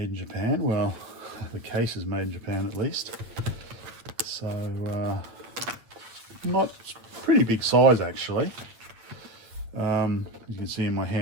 in Japan. Well, the case is made in Japan at least. So not pretty big size actually. You can see in my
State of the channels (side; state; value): left; late; 8.6 ms